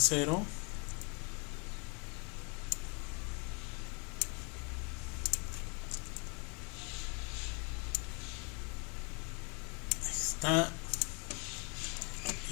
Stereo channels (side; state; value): right; quieter; 33.8 dB